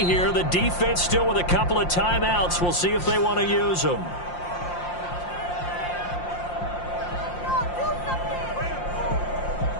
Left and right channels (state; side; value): late; right; 5.7 ms